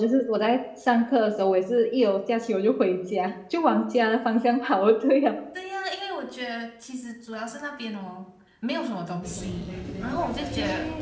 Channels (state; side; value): identical; both; correlation 1.00